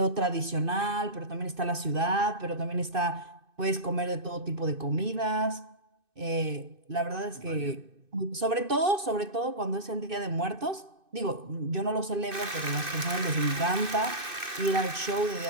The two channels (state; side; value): late; left; 2.6 ms